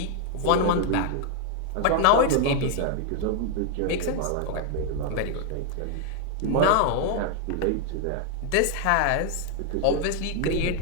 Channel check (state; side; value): different; both; correlation 0.00